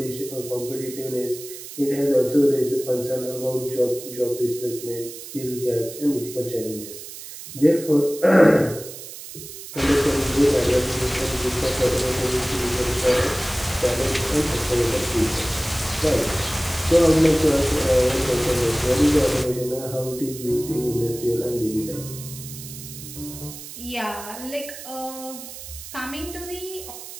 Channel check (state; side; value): noise; right; hiss, 13 dB below the sound